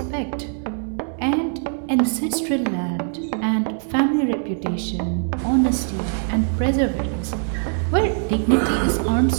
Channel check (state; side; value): silent; left; 64 dB below the other